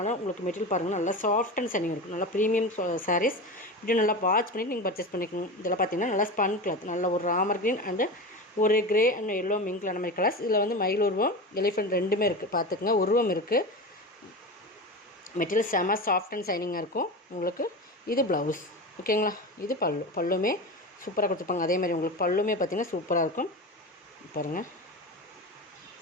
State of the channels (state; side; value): normal; both; correlation 0.25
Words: உங்களுக்கு மெட்டீரியல் பாருங்கள், நல்லா சாஃப்ட் அண்ட் சனிங் இருக்கும். நல்லா ப்ரீமியம் சாரீஸ் இப்படி நல்லா வாட்ச் பண்ணிவிட்டு நீங்கள் பர்ச்சேஸ் பண்ணிக்கோங்க. இதெல்லாம் பார்த்தீங்கன்னா நல்லா ஸ்பன் கிளாத், நல்ல ஒரு ராமர் க்ரீன் அண்டு ஒரு கிரே அண்ட் எல்லோ மிங்க்ல அந்த மாதிரி கலர்ஸ். இதில் வந்து மயில் உருவம், எலிஃபெண்ட் ரெண்டுமே இருக்குது. பார்த்துக்குங்க, உருவம் இருக்குது. மெட்டீரியல் செம சாஃப்ட் அண்ட் சைனிங்காக இருக்கும் உங்களுக்கு. இது ப்ளவுஸ். ஓகேங்களா? இது பல்லுமே சூப்பராக கொடுத்துருப்பாங்க. அதே மாதிரி உங்களுக்கு பல்லுமே பார்த்திங்கன்னா சூப்பராக இருக்கும். பாருங்கள்,